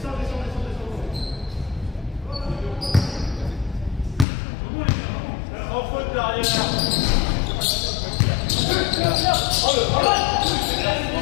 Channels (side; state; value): right; drops out; at 4.2 s